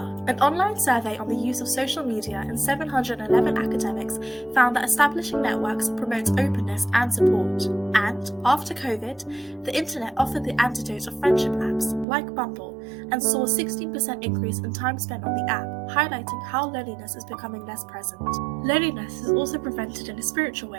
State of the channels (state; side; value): drops out; left; at 12.1 s